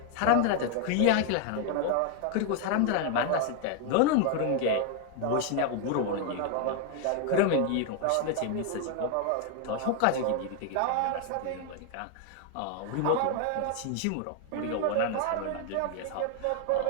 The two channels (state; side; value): different; both; correlation 0.00